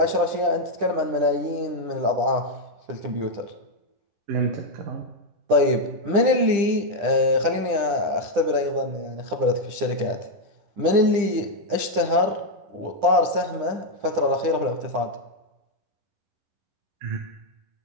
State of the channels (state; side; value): late; left; 10 ms